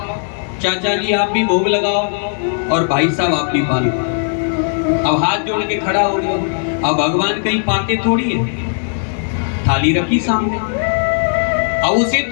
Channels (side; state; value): right; silent; digital silence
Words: चाचा जी आप भी भोग लगाओ, और भाई साहब आप भी पालो। अब हाथ जोड़ के खड़ा हो गया। अब भगवान कहीं पाते थोड़ी है, थाली रखी सामने। अब उसे